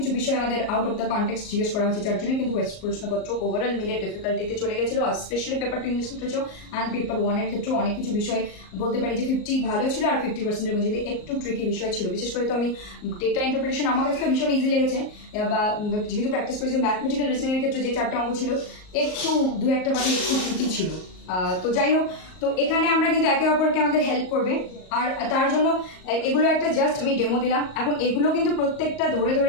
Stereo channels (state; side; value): late; right; 38 ms